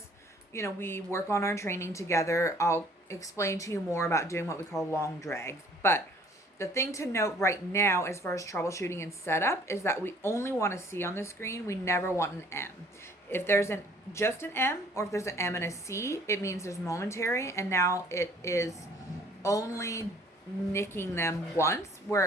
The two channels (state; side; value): normal; both; correlation 0.57